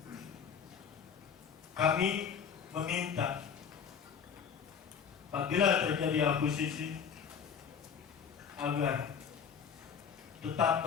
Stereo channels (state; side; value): quieter; right; 7.1 dB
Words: kami meminta apabila terjadi akuisisi agar tetap